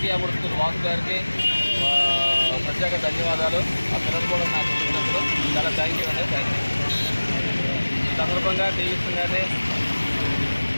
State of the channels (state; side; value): inverted; both; correlation -1.00